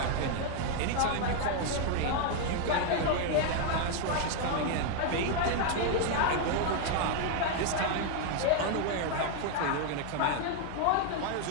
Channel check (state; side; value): different; both; correlation 0.00